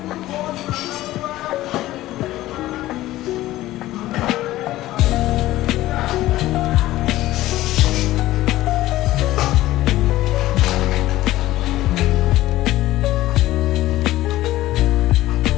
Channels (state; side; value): quieter; right; 15.8 dB